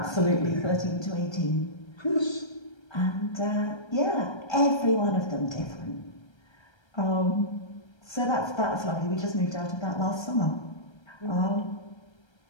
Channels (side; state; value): right; late; 1.3 ms